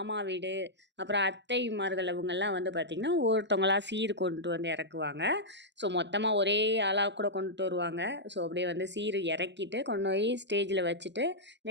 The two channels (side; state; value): left; late; 0.52 ms